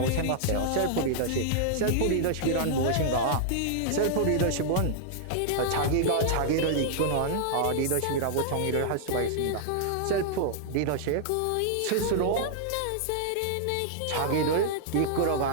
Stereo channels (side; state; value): both; different; correlation -0.01